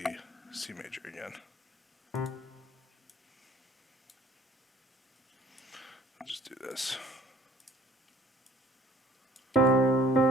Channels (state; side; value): normal; both; correlation 0.55